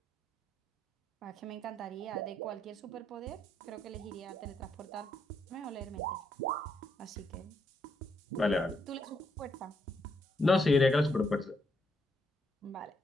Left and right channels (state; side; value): normal; both; correlation 0.76